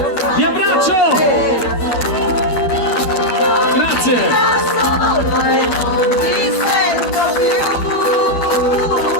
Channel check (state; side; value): late; right; 12 ms